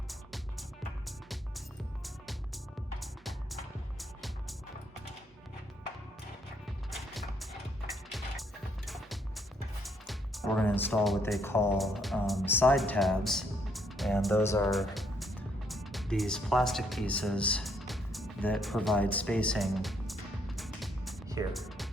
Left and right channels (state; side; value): normal; both; correlation 0.71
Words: We're going to install what they call side tabs, and those are these plastic pieces that provide spacing here.